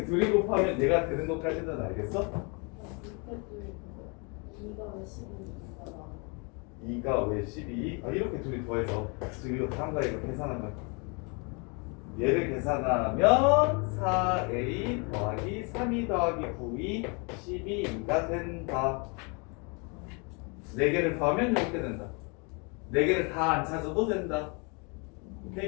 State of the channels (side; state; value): right; quieter; 32.9 dB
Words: 둘이 곱하면 얘가 되는 것까지는 알겠어? 밑에 둘이 2가 왜 12인가 나 2가 왜 12? 이렇게 둘이 더해서 지금 이거 다음과 이거 계산한 거야. 얘를 계산하면 4a 더하기 3e 더하기 9e 12가 된다. 4개를 더하면 이렇게 된다. 4개를 다 안 찾아도 된다.